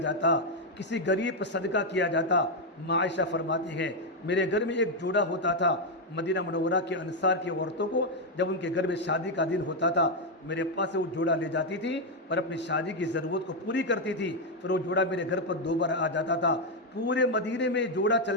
کسی غریب پر صدقہ کیا جاتا۔ عائشہ فرماتی ہے میرے گھر میں ایک جوڑا ہوتا تھا، مدینہ منورہ کے انصار کی عورتوں کو جب ان کے گھر میں شادی کا دن ہوتا تھا میرے پاس سے وہ جوڑا لے جاتی تھی اور اپنی شادی کی ضرورت کو پوری کرتی تھی، پھر وہ جوڑا میرے گھر پر 2 بار آ جاتا تھا۔ پورے مدینے میں جوڑا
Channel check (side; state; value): both; normal; correlation 0.02